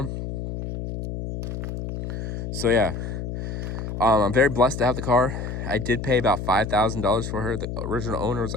So yeah, I'm very blessed to have the car. I did pay about $5,000 for her. The original owner was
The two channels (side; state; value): left; noise; hum, 5 dB below the sound